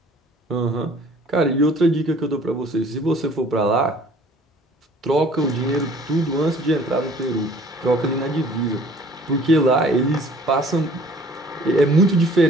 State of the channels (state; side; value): normal; both; correlation 0.53